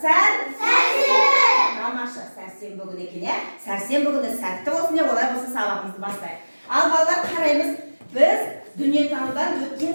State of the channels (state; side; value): inverted; both; correlation -1.00